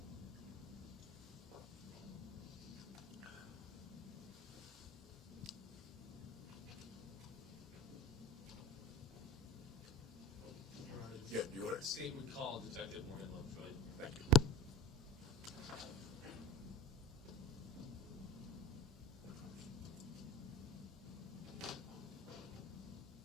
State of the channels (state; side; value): normal; both; correlation 0.39